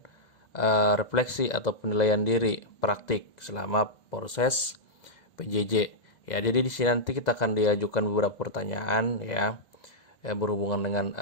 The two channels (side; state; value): right; late; 2.0 ms